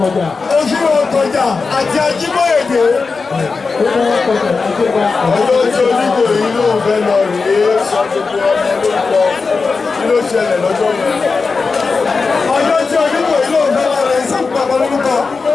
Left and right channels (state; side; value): quieter; right; 4.5 dB